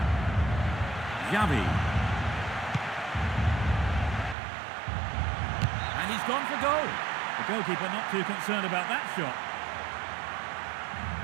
Xavi. And he's gone for goal. The goalkeeper not too concerned about that shot.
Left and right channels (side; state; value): left; drops out; at 4.4 s